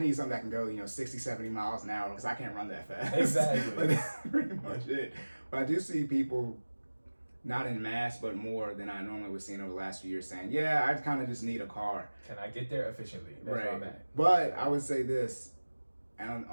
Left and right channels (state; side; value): inverted; both; correlation -1.00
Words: that can go, you know, 60, 70 miles an hour because I can't run that fast. Exactly. But that's pretty much it. But I do see people, not in mass, but more than I normally would see over the last few years saying, yeah, I kind of just need a car. Can I get there efficiently? That's where I'm at. But I would say this,